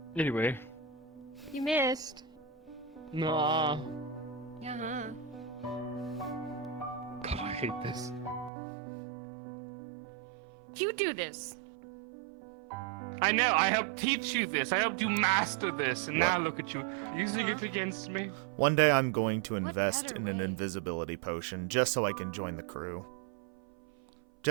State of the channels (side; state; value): left; drops out; at 8.5 s